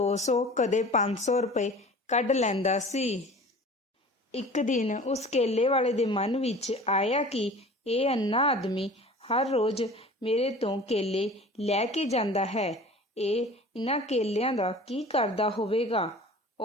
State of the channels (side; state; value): both; normal; correlation 0.42